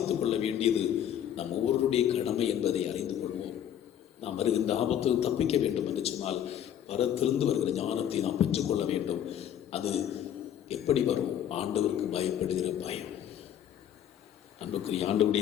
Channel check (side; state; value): right; quieter; 10.1 dB